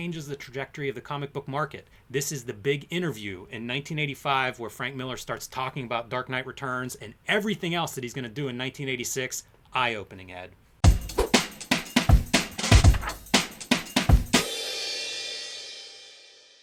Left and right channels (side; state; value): both; identical; correlation 1.00